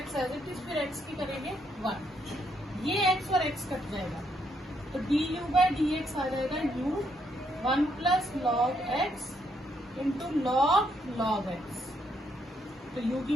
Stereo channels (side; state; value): both; normal; correlation 0.74